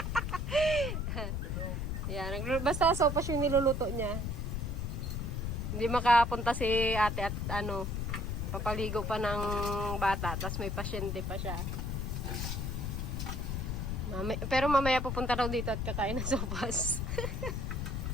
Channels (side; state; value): left; noise; rumble, 2 dB below the sound